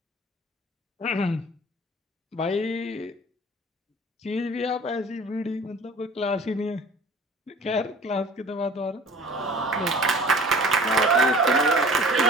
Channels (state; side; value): normal; both; correlation 0.45